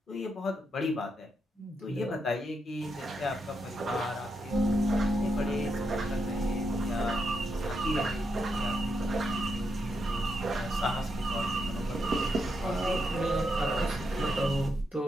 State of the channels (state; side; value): normal; both; correlation 0.82